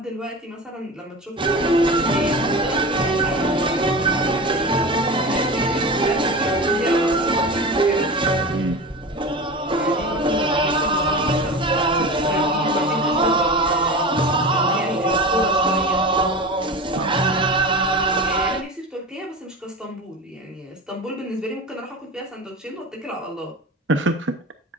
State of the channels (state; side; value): normal; both; correlation 0.30